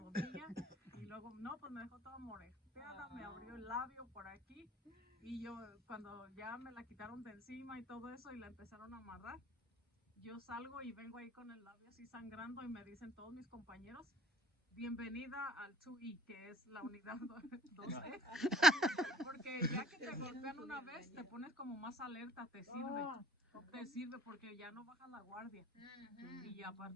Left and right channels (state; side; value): normal; both; correlation 0.53